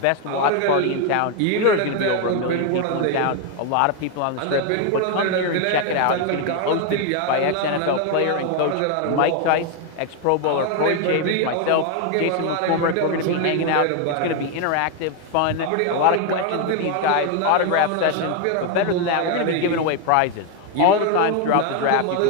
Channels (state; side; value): different; both; correlation 0.01